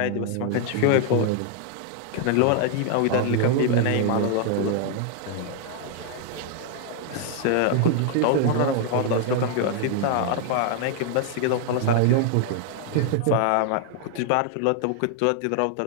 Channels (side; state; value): both; different; correlation 0.00